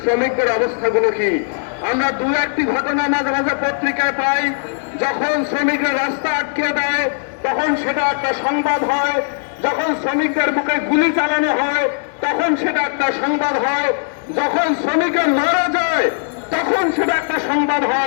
শ্রমিকদের অবস্থাগুলো কি? আমরা দু একটি ঘটনা মাঝে মাঝে পত্রিকায় পাই। যখন শ্রমিকরা রাস্তা আটকে দেয় তখন সেটা একটা সংবাদ হয়, যখন শ্রমিকদের বুকে গুলি চালানো হয় তখন সেটা একটা সংবাদ হয়, যখন শ্রমিকরা মারা যায় তখন সেটা একটা সংবাদ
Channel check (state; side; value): silent; right; digital silence